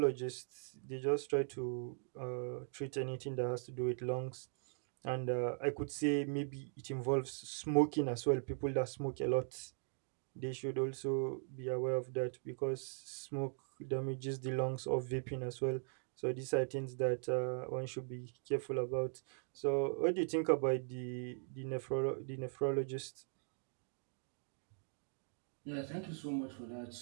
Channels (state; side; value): silent; left; digital silence